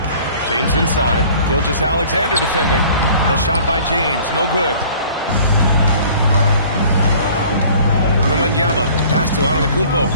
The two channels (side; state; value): both; inverted; correlation -0.50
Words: James inside. Gilgeous-Alexander defending. The shot by James, no good. Wembanyama, pass to Antetokounmpo.